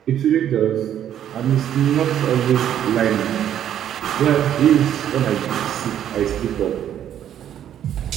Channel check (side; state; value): left; quieter; 10.4 dB